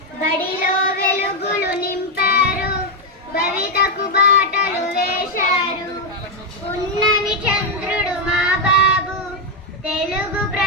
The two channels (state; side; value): normal; both; correlation 0.02